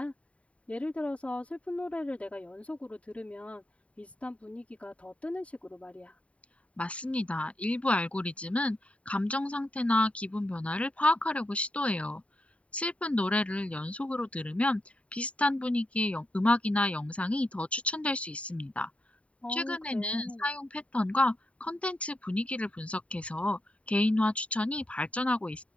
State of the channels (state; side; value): late; right; 0.065 ms